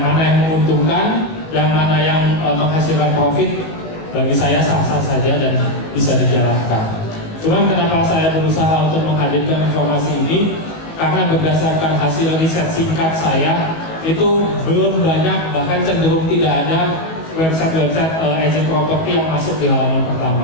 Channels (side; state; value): right; late; 19 ms